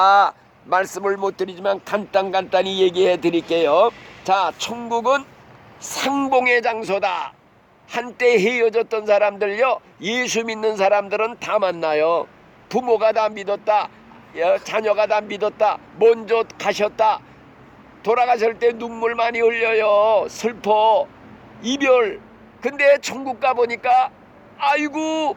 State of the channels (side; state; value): both; identical; correlation 1.00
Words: 말씀을 못 드리지만 간단히 얘기해 드릴게요. 자, 천국은 상봉의 장소다. 한때 헤어졌던 사람들요 예수 믿는 사람들은 다 만나요. 부모가 다 믿었다, 자녀가 다 믿었다, 먼저 가셨다. 돌아가실 때 눈물 많이 흘려요. 슬퍼, 이별. 근데 천국 가보니까 아이고